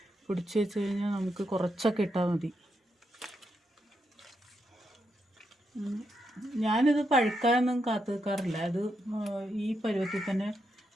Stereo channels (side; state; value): both; normal; correlation 0.82